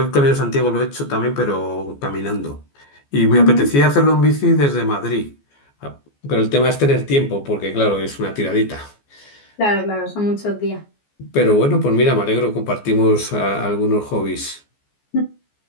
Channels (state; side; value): late; right; 14 ms